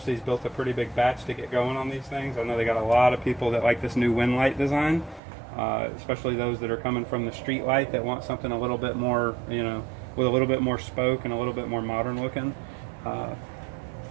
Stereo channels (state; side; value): drops out; left; at 5.2 s